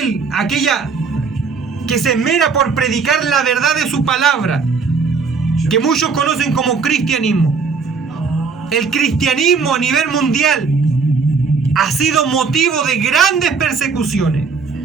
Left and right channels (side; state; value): left; quieter; 5.1 dB